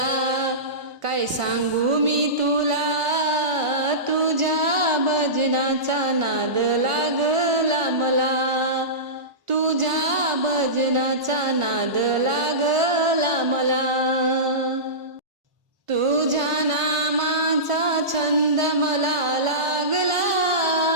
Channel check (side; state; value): left; late; 1.5 ms